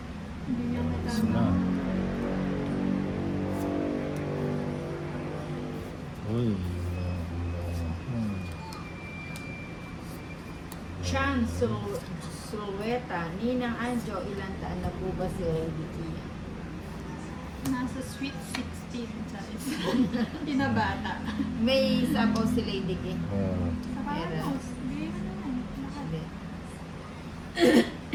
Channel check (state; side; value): identical; both; correlation 1.00